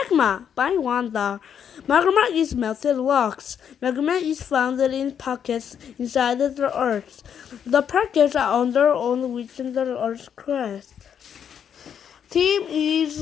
I wonder. Magma is melted rocks. Magma is found in pockets inside the earth. The pockets are under on which the earth's crust. Tim is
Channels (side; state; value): right; quieter; 8.3 dB